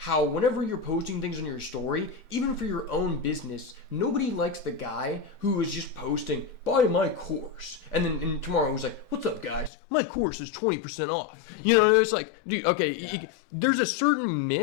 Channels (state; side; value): drops out; right; at 9.7 s